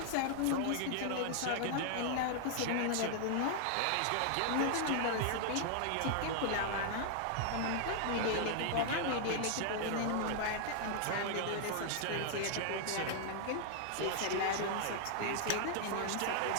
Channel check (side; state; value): both; different; correlation -0.01